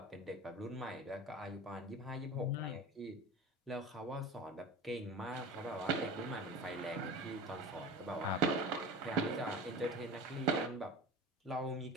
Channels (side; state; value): both; normal; correlation 0.34